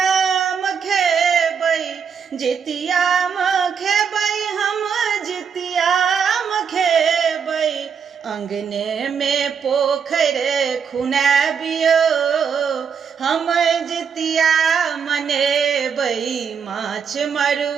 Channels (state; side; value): quieter; left; 6.8 dB